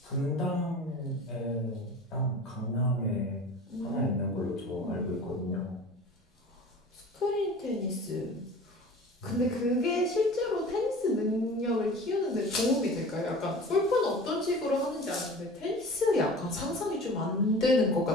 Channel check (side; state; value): both; normal; correlation 0.40